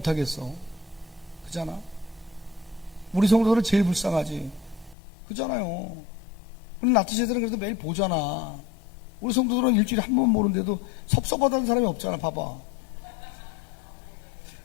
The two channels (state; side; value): drops out; right; at 5.0 s